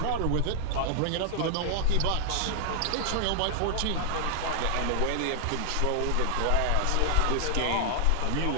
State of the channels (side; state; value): both; different; correlation 0.00